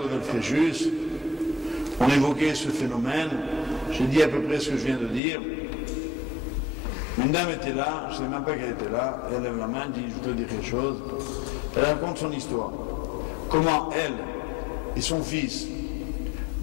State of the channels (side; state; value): right; drops out; at 5.2 s